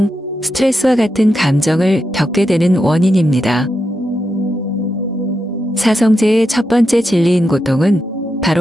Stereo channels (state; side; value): normal; both; correlation 0.86